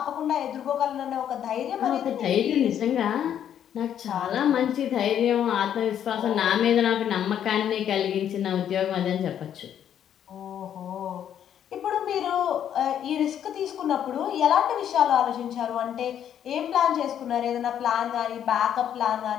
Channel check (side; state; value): right; quieter; 9.7 dB